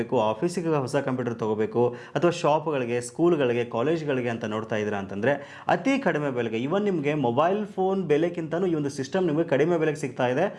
ಆಫೀಸಿಗೆ ಹೊಸ ಕಂಪ್ಯೂಟರ್ ತೊಗೋಬೇಕು, ಅಥವಾ ಶಾಪ್ಗಳಿಗೆ, ಸ್ಕೂಲ್ಗಳಿಗೆ, ಕಾಲೇಜ್ಗಳಿಗೆ ಅಂತ ನೋಡ್ತಾ ಇದ್ದೀರಾ ಅಂತಂದರೆ ಅತಿ ಕಡಿಮೆ ಬೆಲೆಗೆ, ಇವನ್ ನಿಮಗೆ ಮೊಬೈಲ್ ಫೋನ್ ಬೆಲೆಗಿಂತಲೂ ಈ ಒಂದು ಸಿಸ್ಟಮ್ ನಿಮಗೆ ಕಡಿಮೆ ಬೆಲೆಗೆ ಸಿಗ್ತಾ ಇದೆ.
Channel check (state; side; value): identical; both; correlation 1.00